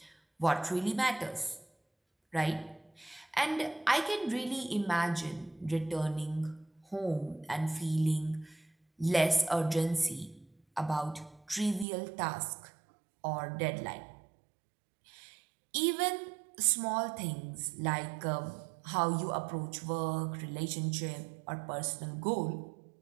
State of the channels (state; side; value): drops out; left; at 11.9 s